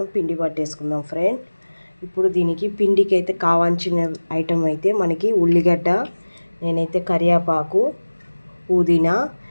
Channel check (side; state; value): both; inverted; correlation -1.00